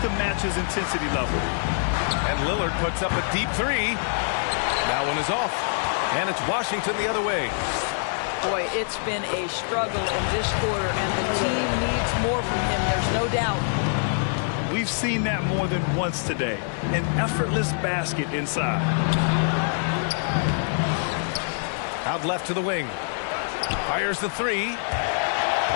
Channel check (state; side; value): silent; right; digital silence